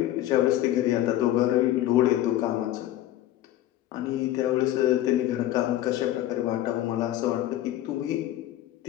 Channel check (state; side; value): quieter; right; 13.7 dB